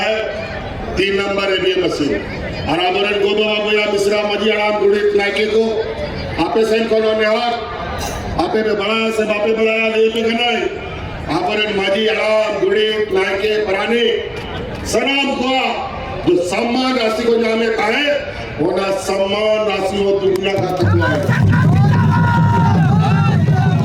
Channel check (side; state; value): both; identical; correlation 1.00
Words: 3 नंबर ईवीएम मशीन और आदरण गोदो बाबूया मिश्रा मजी आराम गुड़ित नायके को आपे सैन कोनो नेहर आपे में बड़ा से बापे बड़ा ये पे गनाई आदरण मजी आराम गुड़ित नायके परानी सनाम को जो सम्मान राशि को नामे कहे वो ना सम्मान राशि हो दुनिया का तत्व है।